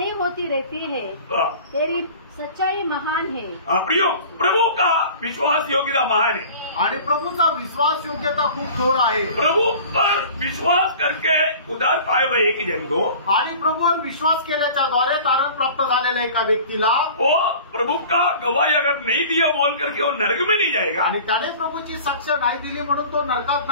होती रहती है, हाँ, तेरी सच्चाई महान है। प्रियो, प्रभु का विश्वास योग्यता महान है, आणि प्रभूचा विश्वास योग्यता खूप थोर आहे। प्रभु पर विश्वास करके उद्धार पाए हुए एक जन को, आणि प्रभूवर विश्वास केल्याच्या द्वारे तारण प्राप्त झालेल्या एका व्यक्तीला, वो प्रभु का गवाही अगर नहीं दिया बोल करके वो नरक में नहीं जाएगा, आणि त्याने प्रभूची साक्ष नाही दिली म्हणून तो नरकात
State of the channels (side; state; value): both; inverted; correlation -0.42